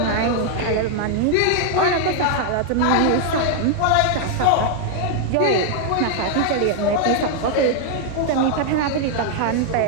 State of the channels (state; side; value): different; both; correlation 0.00